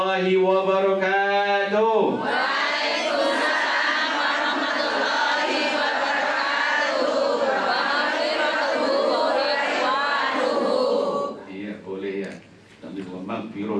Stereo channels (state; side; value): identical; both; correlation 1.00